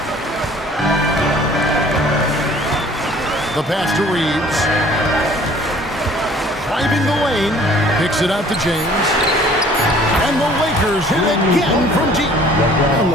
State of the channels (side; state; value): both; normal; correlation 0.53